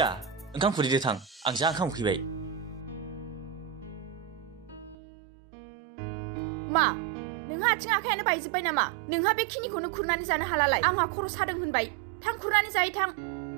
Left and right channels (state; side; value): drops out; left; at 5.0 s